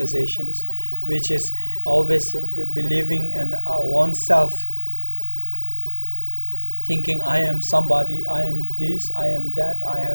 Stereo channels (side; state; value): both; inverted; correlation -1.00